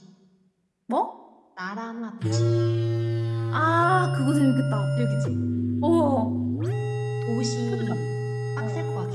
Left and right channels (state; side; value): identical; both; correlation 1.00